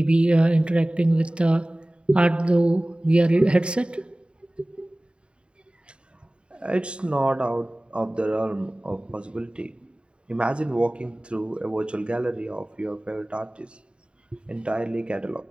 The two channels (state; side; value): late; left; 0.054 ms